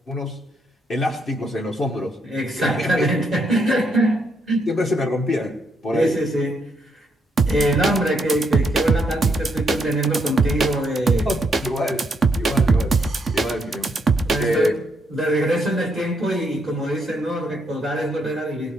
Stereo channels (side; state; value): both; normal; correlation 0.76